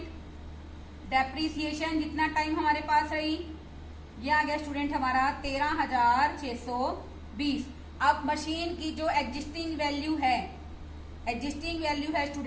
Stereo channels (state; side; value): identical; both; correlation 1.00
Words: डेप्रिसिएशन जितना टाइम हमारे पास रही, ये आ गया स्टूडेंट हमारा 13,620। अब मशीन की जो एग्जिस्टिंग वैल्यू है,